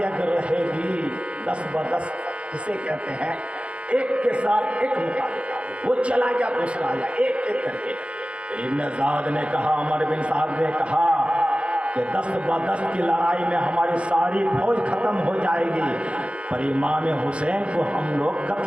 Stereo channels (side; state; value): left; late; 0.059 ms